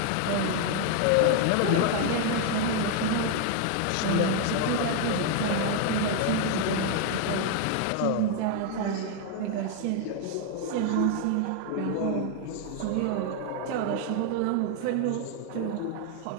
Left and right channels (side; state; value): both; different; correlation 0.00